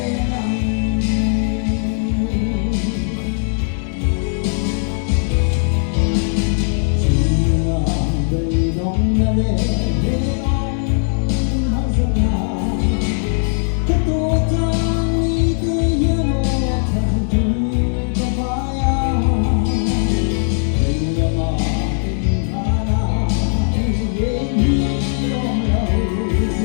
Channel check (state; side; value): silent; right; digital silence